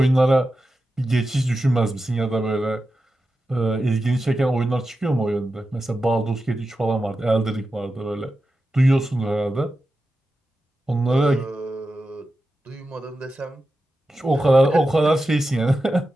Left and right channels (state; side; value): normal; both; correlation 0.91